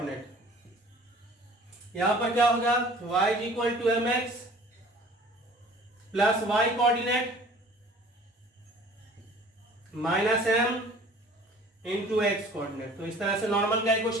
यहां पर क्या होगा, y is equal to m x plus y coordinate minus m into x coordinate. तो इस तरह से नॉर्मल का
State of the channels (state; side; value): normal; both; correlation 0.48